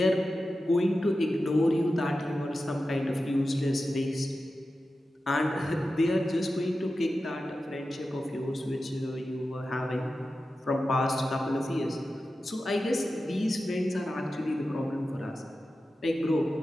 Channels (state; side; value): normal; both; correlation 0.92